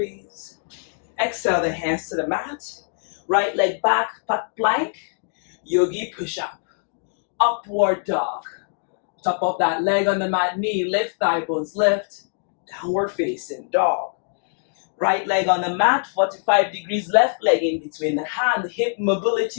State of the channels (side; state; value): right; silent; digital silence